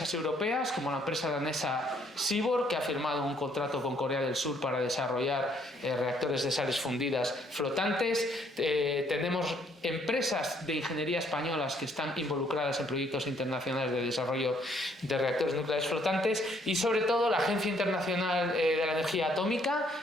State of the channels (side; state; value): both; normal; correlation 0.67